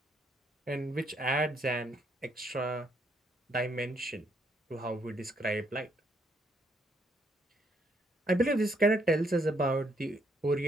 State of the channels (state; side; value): normal; both; correlation 0.72